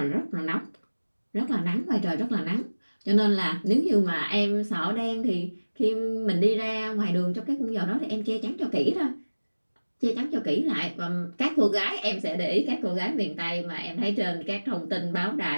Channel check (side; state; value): both; inverted; correlation -1.00